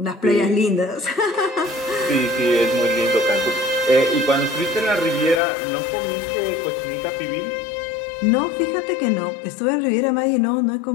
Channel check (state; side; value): drops out; right; at 5.4 s